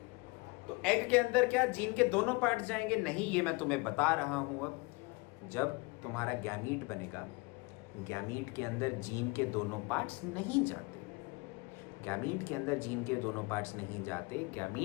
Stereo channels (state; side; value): quieter; right; 26.5 dB